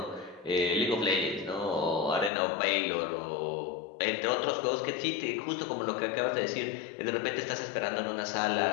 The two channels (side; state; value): right; drops out; at 2.3 s